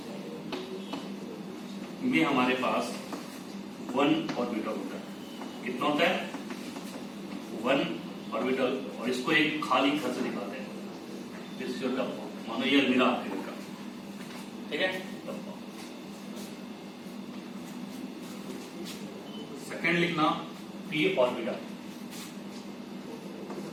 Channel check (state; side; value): identical; both; correlation 1.00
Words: ये हमारे पास 1 ऑर्बिटल होता है, कितना होता है 1 ऑर्बिटल, और इसको एक खाली घर से दिखाते हैं, दिस इज योर डब्बा, मानो ये अलमीरा आपके घर का, ठीक है। सेकेंड लिखना पी ऑर्बिटल,